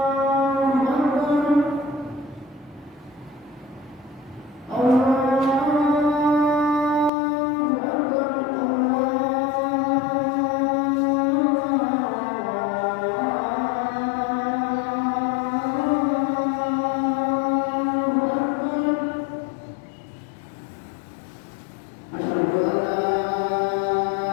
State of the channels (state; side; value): drops out; right; at 7.1 s